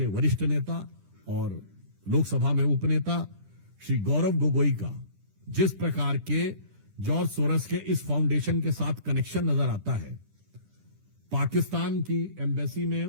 वरिष्ठ नेता और लोकसभा में उपनेता श्री गौरव गोगोई का जिस प्रकार के जॉर्ज सोरस के इस फाउंडेशन के साथ कनेक्शन नजर आता है, पाकिस्तान की एम्बेसी में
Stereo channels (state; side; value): late; left; 10 ms